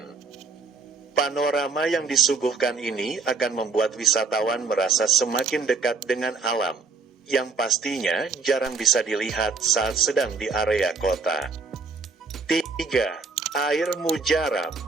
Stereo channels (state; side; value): quieter; left; 4.4 dB